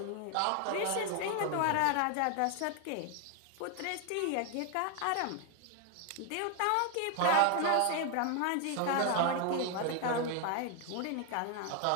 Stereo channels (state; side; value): different; both; correlation 0.00